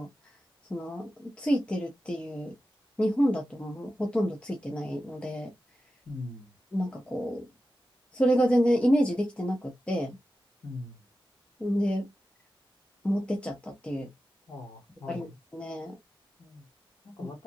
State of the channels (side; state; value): both; normal; correlation 0.93